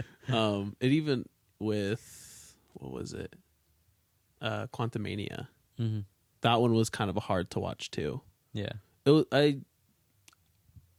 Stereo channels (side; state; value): both; identical; correlation 1.00